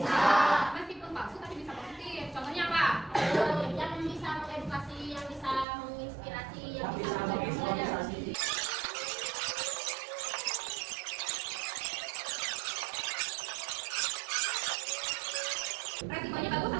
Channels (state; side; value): drops out; left; at 5.7 s